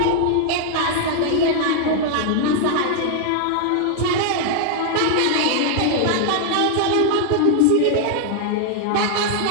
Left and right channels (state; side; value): different; both; correlation 0.00